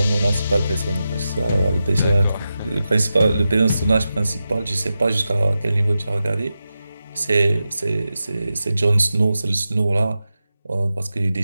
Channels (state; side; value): inverted; both; correlation -0.91